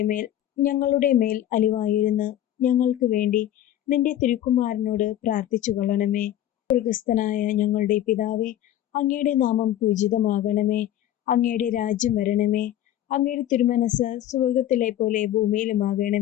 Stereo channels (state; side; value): quieter; right; 12.2 dB